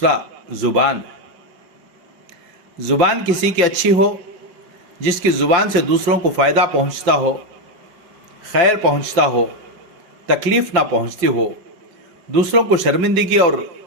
زبان ہے۔ زبان کسی کی اچھی ہو، جس کی زبان سے دوسروں کو فائدہ پہنچتا ہو، خیر پہنچتا ہو، تکلیف نہ پہنچتی ہو، دوسروں کو شرمندگی اور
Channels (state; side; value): late; left; 5.3 ms